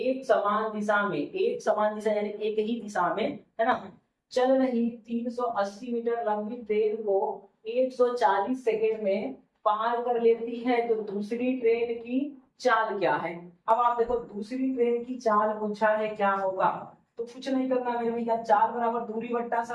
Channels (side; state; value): both; identical; correlation 1.00